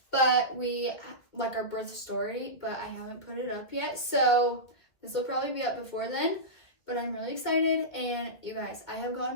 but our birth story, but I haven't put it up yet. So this will probably be up before then, but I'm really excited. And you guys, I have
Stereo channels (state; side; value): late; right; 2.3 ms